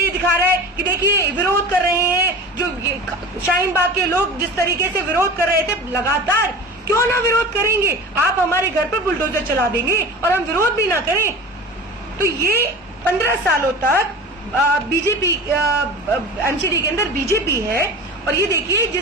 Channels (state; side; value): normal; both; correlation 0.35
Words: ये दिखा रहा है कि देखिए विरोध कर रहे हैं, जो शाहीन बाग के लोग जिस तरीके से विरोध कर रहे थे लगातार, क्यों ना विरोध करेंगे। आप हमारे घर पर बुलडोजर चला देंगे और हम विरोध भी ना करें। तो ये 15 सालों तक बीजेपी एमसीडी के अंदर बीजेपी है और ये देखिए